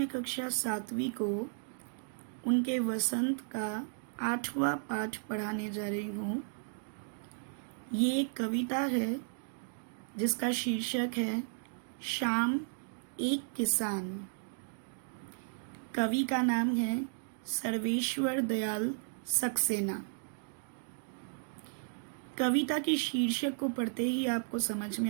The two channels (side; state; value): left; silent; digital silence